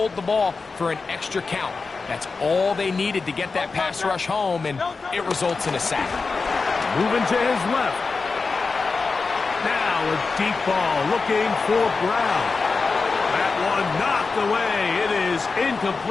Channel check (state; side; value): quieter; right; 4.3 dB